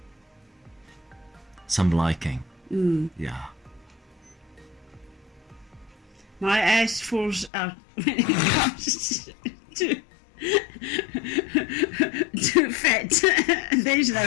liking. Yeah. My ass falls out when it comes to fat. There's no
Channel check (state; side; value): drops out; right; at 7.5 s